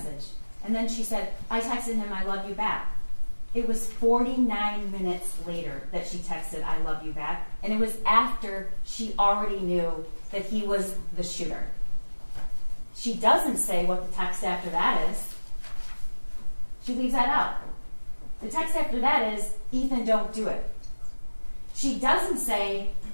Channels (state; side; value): inverted; both; correlation -1.00